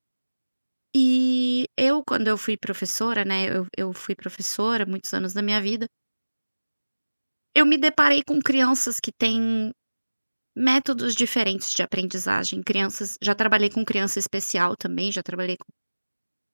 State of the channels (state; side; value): inverted; both; correlation -1.00